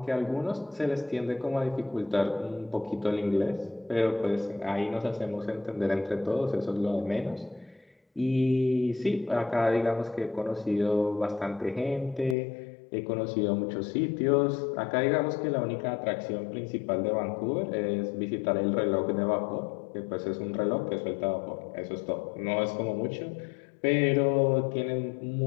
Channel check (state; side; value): drops out; right; at 12.4 s